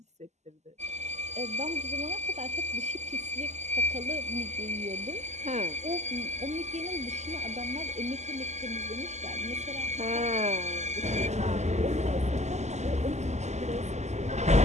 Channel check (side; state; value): left; late; 0.33 ms